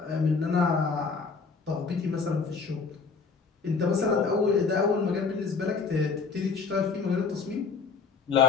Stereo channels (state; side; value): quieter; right; 5.1 dB